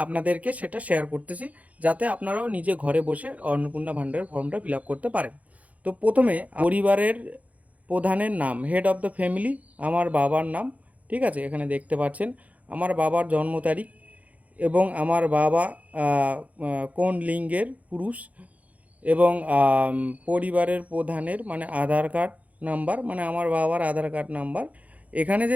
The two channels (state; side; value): late; left; 0.070 ms